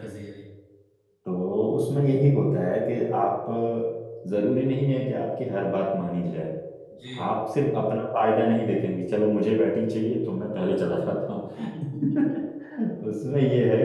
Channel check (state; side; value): identical; both; correlation 1.00